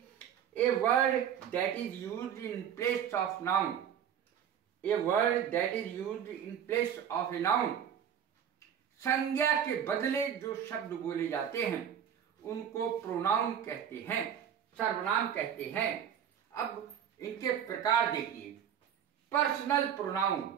A word that is used in place of noun, a word that is used in place of a noun. संज्ञा के बदले जो शब्द बोले जाते हैं उनको प्रोनाउन कहते हैं, सर्वनाम कहते हैं। अब इनके प्रकार देखिए। पर्सनल प्रोनाउन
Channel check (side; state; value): left; quieter; 8.9 dB